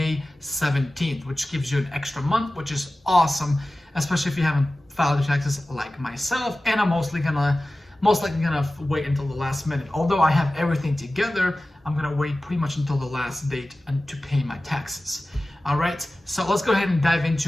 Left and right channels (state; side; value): normal; both; correlation 0.96